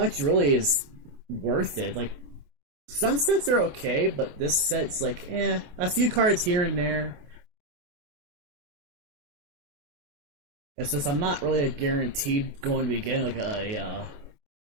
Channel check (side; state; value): left; late; 28 ms